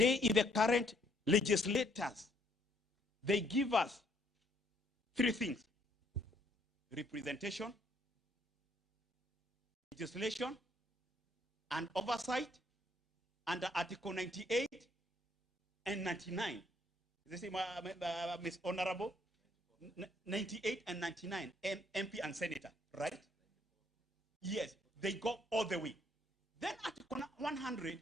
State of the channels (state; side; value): normal; both; correlation 0.67